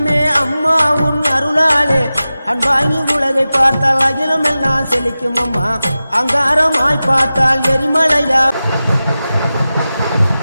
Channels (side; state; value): both; inverted; correlation -0.95